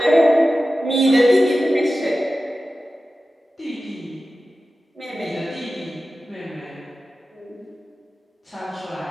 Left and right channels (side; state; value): both; normal; correlation 0.94